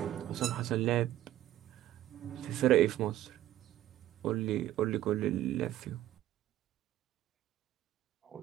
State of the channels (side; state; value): left; quieter; 13.5 dB